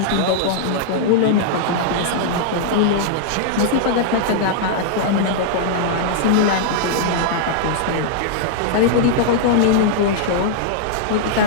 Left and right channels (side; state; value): both; different; correlation -0.01